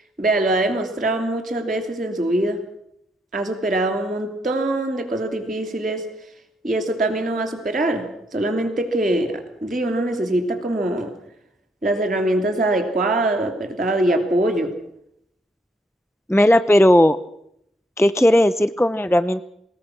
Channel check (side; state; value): both; normal; correlation 0.77